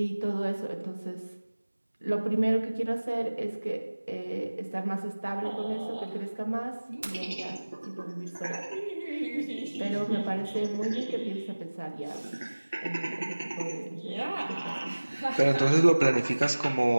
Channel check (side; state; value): both; inverted; correlation -1.00